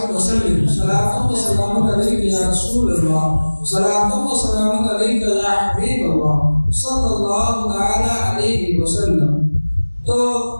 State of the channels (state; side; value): inverted; both; correlation -1.00